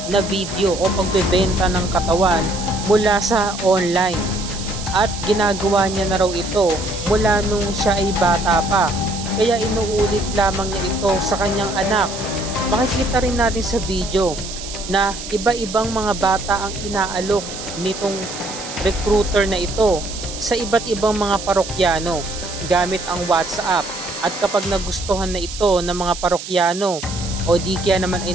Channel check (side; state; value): right; noise; hiss, 10 dB below the sound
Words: na video o pagbebenta ng katawan mula sa online. At ginagawa niya na raw ito mula nung siya ay bata pa. Kaya inuulit lamang niya ito sa kanyang anak. Makikita rin natin sa video na iba-ibang mga bata ang inaalok nitong recruiter na ito sa iba't ibang mga parokyano gamit ang WhatsApp. At kapag nagustuhan na ito ng mga parokyano o di kaya naman ay